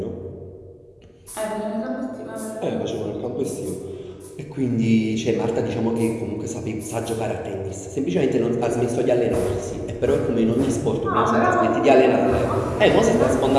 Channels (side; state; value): both; identical; correlation 1.00